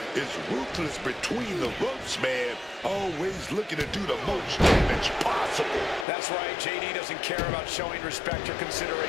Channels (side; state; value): right; drops out; at 6.1 s